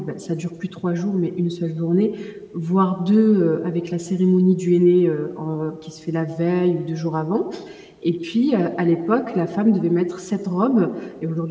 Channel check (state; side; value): identical; both; correlation 1.00